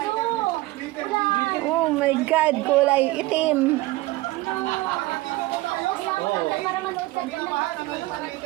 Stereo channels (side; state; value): left; quieter; 19.4 dB